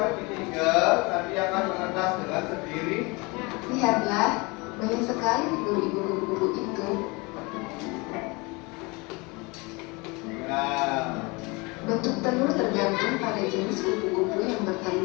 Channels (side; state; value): right; quieter; 26.7 dB